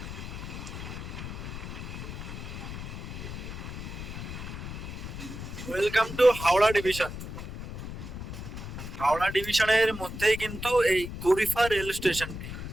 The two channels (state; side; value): noise; left; rumble, 8 dB below the sound